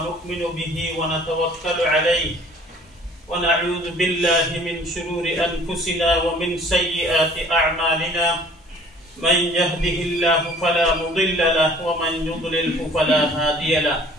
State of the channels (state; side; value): normal; both; correlation 0.52